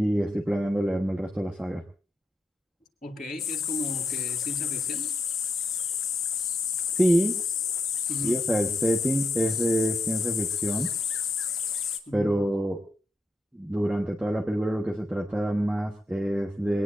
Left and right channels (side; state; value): both; normal; correlation 0.83